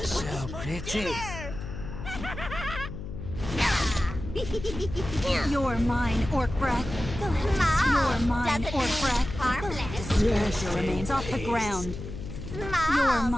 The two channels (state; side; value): noise; left; hum, 9 dB below the sound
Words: so pretty. You're mine, orc breath. You're mine, orc breath. Harmless. Your remains off the ground. Smalls You're